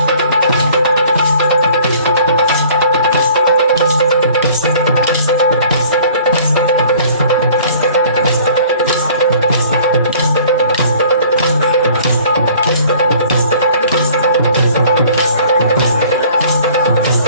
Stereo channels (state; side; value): inverted; both; correlation -0.52